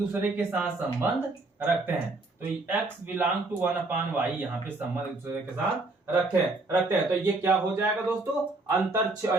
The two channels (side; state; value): left; quieter; 3.1 dB